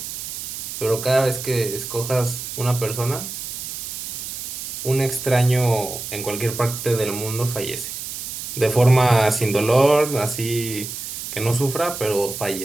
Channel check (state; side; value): noise; right; hiss, 7 dB below the sound